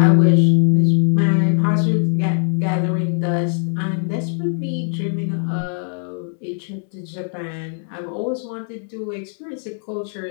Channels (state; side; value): silent; right; digital silence